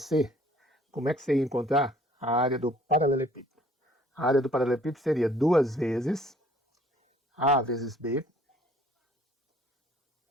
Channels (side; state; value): both; normal; correlation 0.58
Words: como é que você ia encontrar a área do paralelepípedo? A área do paralelepípedo seria 2 vezes A vezes B